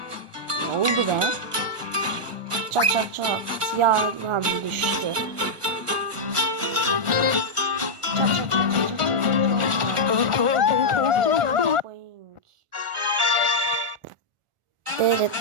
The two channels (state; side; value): late; left; 1.4 ms